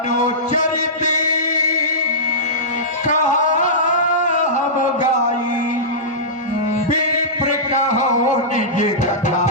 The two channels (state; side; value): normal; both; correlation -0.17